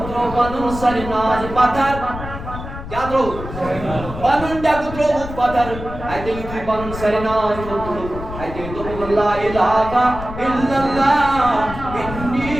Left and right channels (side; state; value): left; noise; rumble, 10 dB below the sound